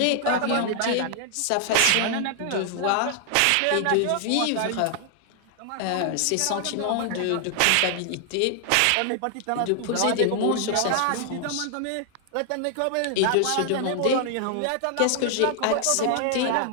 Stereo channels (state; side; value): different; both; correlation 0.00